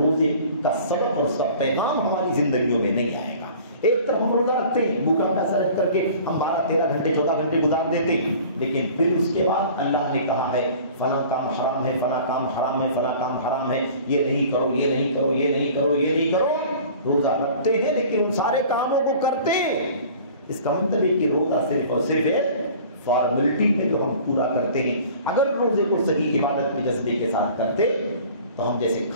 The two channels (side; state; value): both; inverted; correlation -0.46